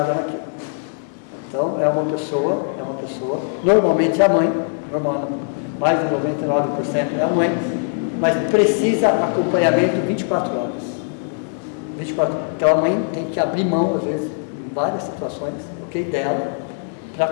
naquilo. Então, é uma pessoa, normalmente é a mãe, mais de 99% é a mãe, mas precisa acompanhamento 24 horas. 24. Então, a mãe tem que abrir mão, às vezes, em várias situações, dela, para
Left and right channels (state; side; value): silent; right; 62 dB below the other